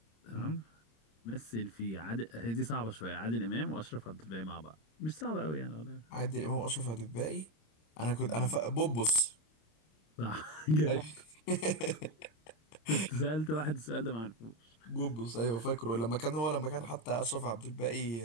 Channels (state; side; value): late; right; 26 ms